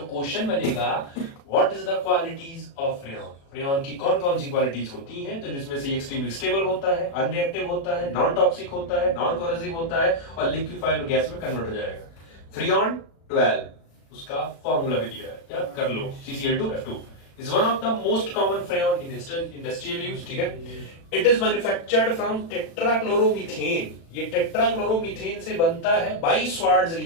क्वेश्चन बनेगा what is the qualities of freon, freon की कौन कौन सी क्वालिटीज होती हैं? तो जिसमें से एक्सट्रीमली स्टेबल होता है, अनरिएक्टिव होता है, नॉन टॉक्सिक होता है, नॉन कोरोसिव होता है और लिक्विफाइड गैस में कन्वर्ट हो जाएगा। फ्रेऑन 12 उसका फॉर्मूला भी दिया है, याद कर लो, CCl2F2 is one of the most common freon in industrial use, ठीक है। It is manufactured from tetrachloromethane, ये टेट्राक्लोरोमीथेन से बनता है बाई स्वार्ट्ज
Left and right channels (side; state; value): right; late; 36 ms